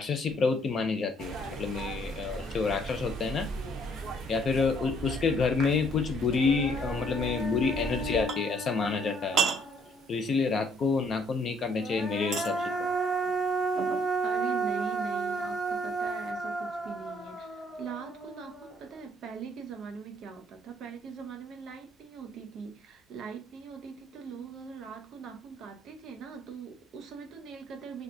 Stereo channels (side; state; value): both; normal; correlation 0.65